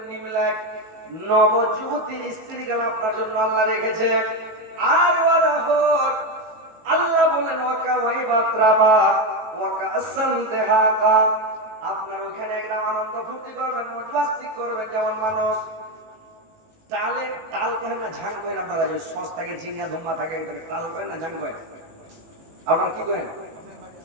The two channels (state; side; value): late; left; 18 ms